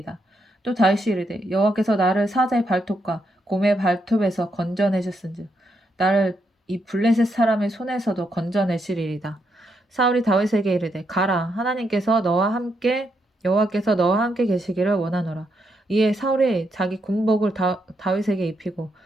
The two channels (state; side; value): normal; both; correlation 0.79